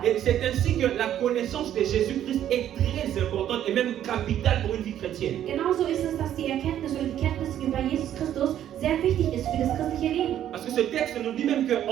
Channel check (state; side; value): quieter; left; 11.0 dB